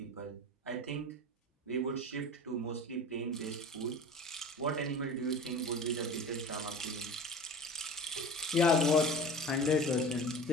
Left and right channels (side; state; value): both; normal; correlation 0.36